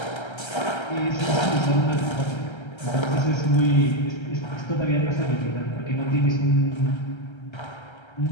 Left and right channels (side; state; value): right; late; 1.3 ms